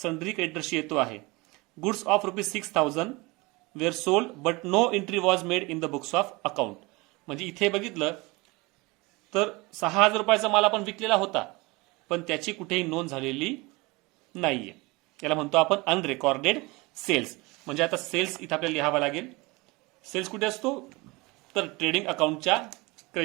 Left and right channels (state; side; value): quieter; left; 24.3 dB